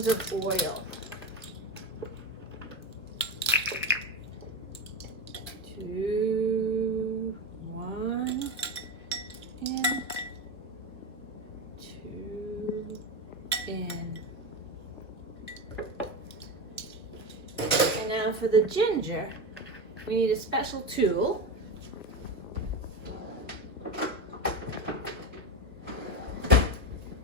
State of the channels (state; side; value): normal; both; correlation 0.19